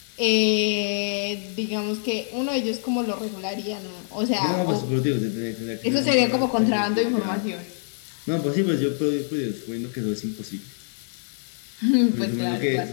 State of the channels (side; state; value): right; silent; digital silence